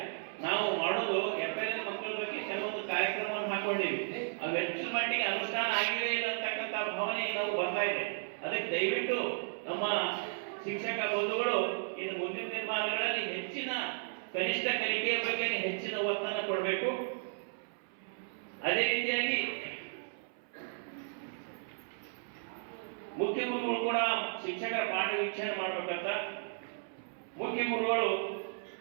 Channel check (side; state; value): left; silent; 55 dB below the other